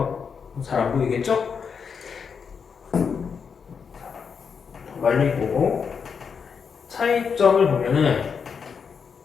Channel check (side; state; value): right; quieter; 6.2 dB